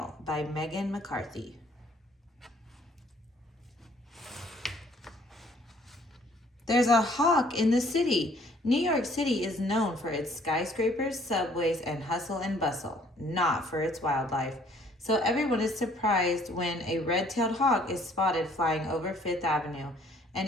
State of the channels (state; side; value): normal; both; correlation 0.60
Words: by Meghan McCarthy. There's a hawk in the city. New York City is known for its skyscrapers, subways, and hustle and bustle, not for its wildlife. So everyone is surprised when a red-tailed hawk is spotted flying over Fifth Avenue,